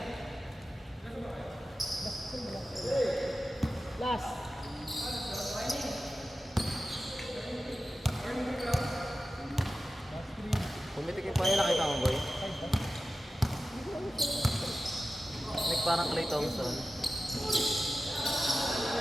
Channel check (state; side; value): normal; both; correlation 0.94